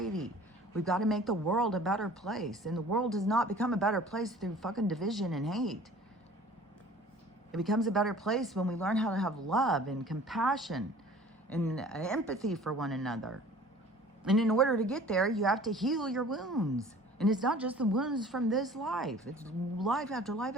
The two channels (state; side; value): normal; both; correlation 0.47